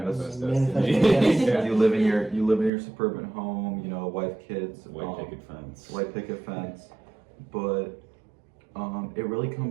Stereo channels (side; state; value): left; drops out; at 2.7 s